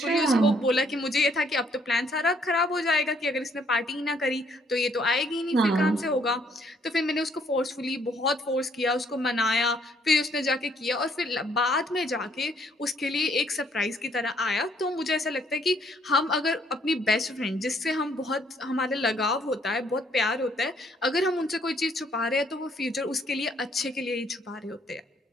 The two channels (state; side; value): normal; both; correlation 0.67